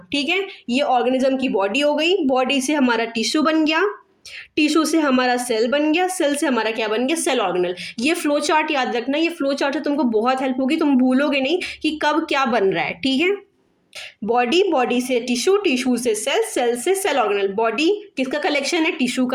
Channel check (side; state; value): both; identical; correlation 1.00